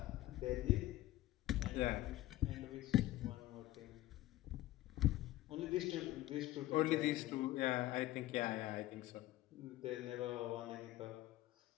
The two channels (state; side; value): quieter; right; 15.9 dB